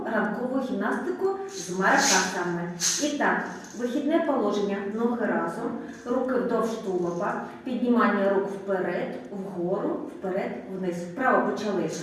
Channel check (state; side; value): identical; both; correlation 1.00